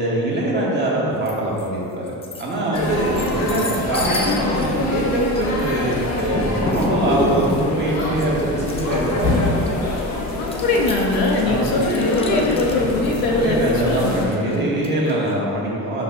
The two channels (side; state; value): both; normal; correlation 0.25